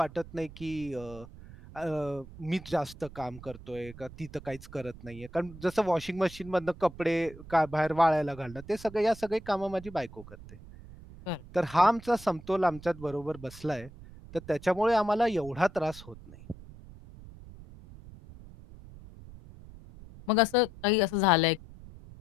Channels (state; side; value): noise; right; rumble, 17 dB below the sound